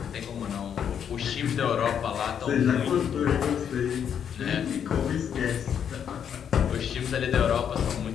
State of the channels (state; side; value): quieter; right; 8.3 dB